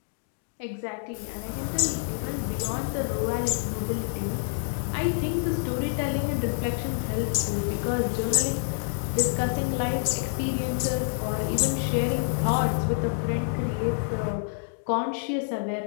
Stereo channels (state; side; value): silent; right; digital silence